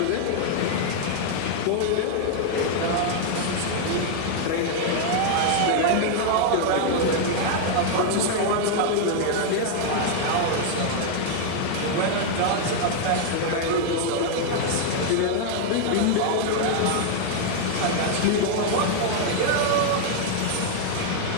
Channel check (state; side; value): different; both; correlation 0.00